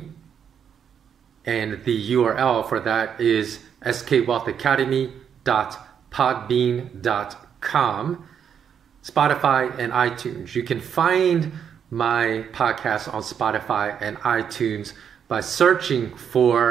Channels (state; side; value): quieter; left; 8.0 dB